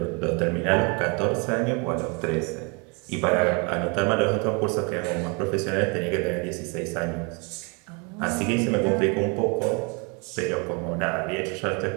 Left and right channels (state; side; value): quieter; left; 32.5 dB